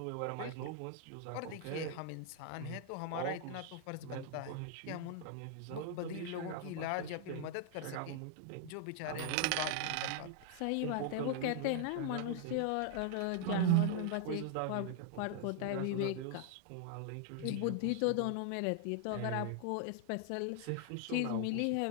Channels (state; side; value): different; both; correlation 0.00